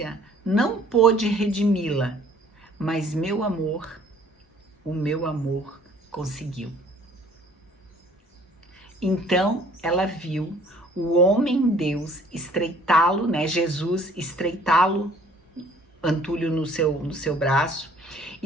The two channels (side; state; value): both; normal; correlation 0.56